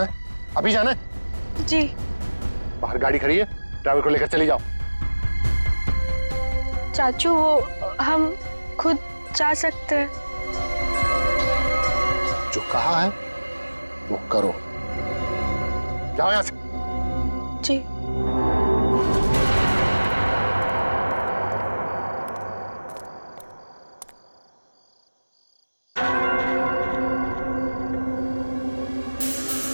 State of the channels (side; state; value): both; inverted; correlation -1.00